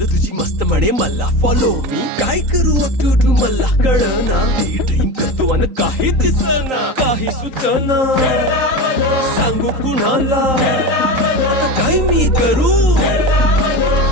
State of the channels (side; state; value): left; late; 3.8 ms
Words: तुझी मस्त म्हणे मला फॉलो मी काय करू टू मला कळना ती ड्रीम करतो आणि काही दिसना काही सुचना सांगू कुणाला आता काय मी करू